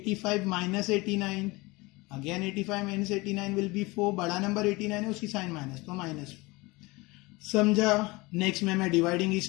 minus 89, again 85 minus 89 will be 4. बड़ा नंबर 89 है, उसकी साइन माइनस तो -4. समझा. नेक्स्ट में मैं डिवाइडिंग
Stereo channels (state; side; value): quieter; right; 23.3 dB